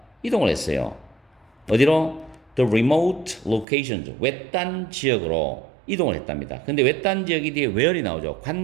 이동을 했어요. 어디로? The remote locations, 외딴 지역으로 이동을 했답니다. 근데 외딴 지역이 뒤에 where이 나오죠.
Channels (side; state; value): left; drops out; at 3.7 s